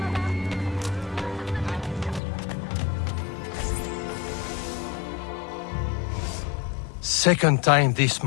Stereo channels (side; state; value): right; drops out; at 2.2 s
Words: Second time this